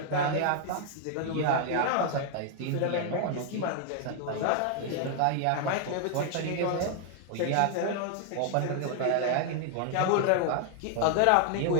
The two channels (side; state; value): both; different; correlation 0.00